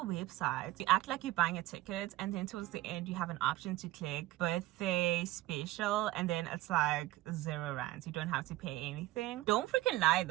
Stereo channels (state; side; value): quieter; left; 17.0 dB